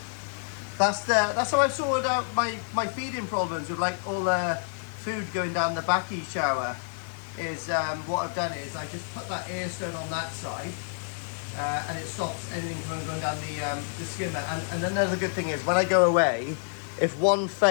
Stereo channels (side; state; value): right; silent; 59 dB below the other